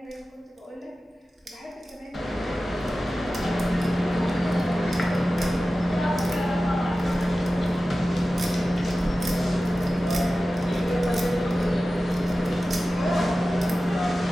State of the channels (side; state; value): both; normal; correlation 0.95